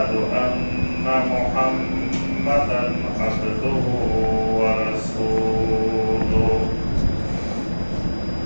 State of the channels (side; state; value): both; inverted; correlation -1.00